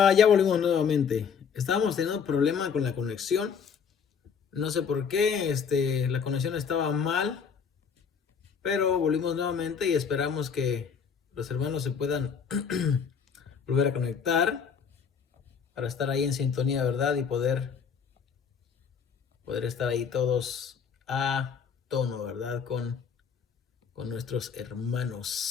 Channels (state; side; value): quieter; right; 6.7 dB